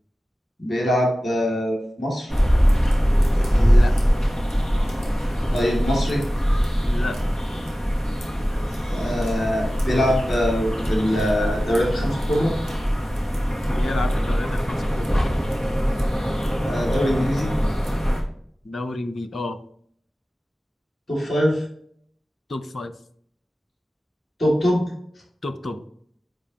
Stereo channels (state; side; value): normal; both; correlation 0.96